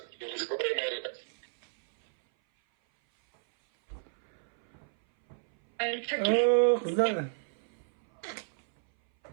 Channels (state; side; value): silent; left; 57 dB below the other